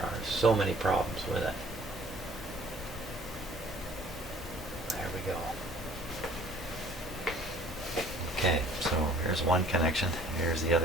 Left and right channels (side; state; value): both; normal; correlation 0.54